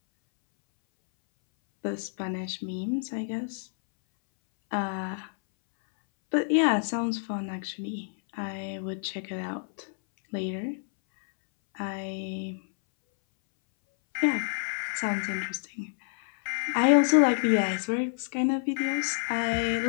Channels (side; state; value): right; silent; 59 dB below the other